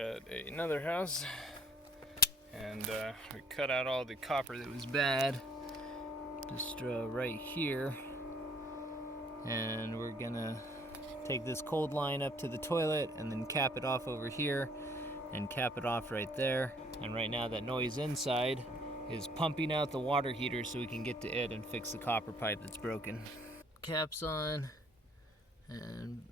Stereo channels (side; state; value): both; normal; correlation 0.61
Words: another house, and we cut out all the copper that was bad, just right here, and we're gonna take this cold line up to the toilet and then cap it off over here and cap it off right there. And right now that noise inside is pumping out the water heater so we can get to it and fix the copper pipe that's broken. Caps on and